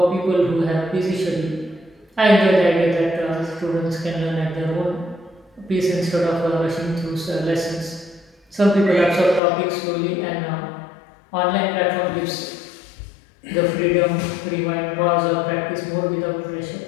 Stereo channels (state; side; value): drops out; right; at 9.4 s